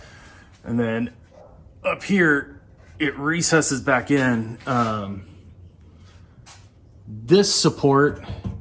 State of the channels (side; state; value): both; identical; correlation 1.00